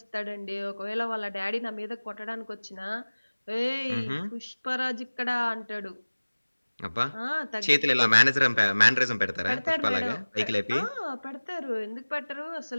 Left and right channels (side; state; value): both; inverted; correlation -1.00